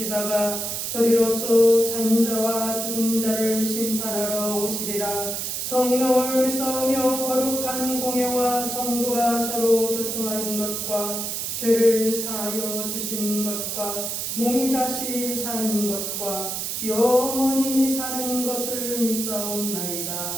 저리로서 산자와 죽은 자를 심판하러 오시리라. 성령을 믿사오며 거룩한 공회와 성도가 서로 교통하는 것과 죄를 사하여 주시는 것과 몸이 다시 사는 것과 영원히 사는 것을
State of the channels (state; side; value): noise; right; hiss, 3 dB below the sound